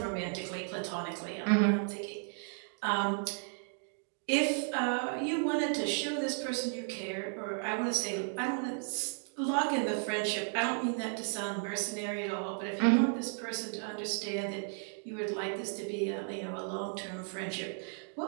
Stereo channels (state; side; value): silent; left; 55 dB below the other